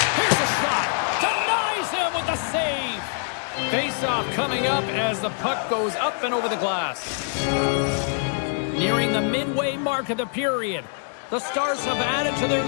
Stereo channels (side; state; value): right; silent; digital silence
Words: Here's a shot. Denies him with the save. Face-off coming up as the puck goes up and over the glass. Nearing the midway mark of the period. The Stars have added to their